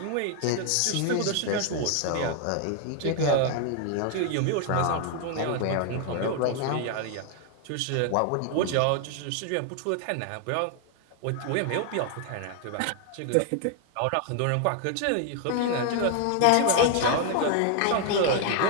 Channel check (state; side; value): different; both; correlation 0.00